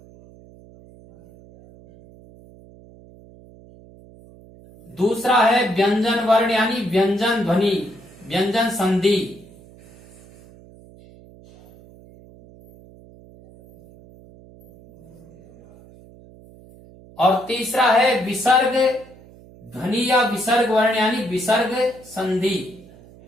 दूसरा है व्यंजन वर्ण यानी व्यंजन ध्वनि, व्यंजन संधि। और तीसरा है विसर्ग ध्वनि या विसर्ग वर्ण यानी विसर्ग संधि।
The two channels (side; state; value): right; noise; hum, 23 dB below the sound